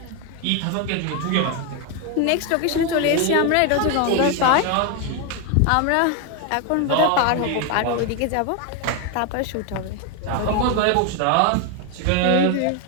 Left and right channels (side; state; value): both; different; correlation 0.01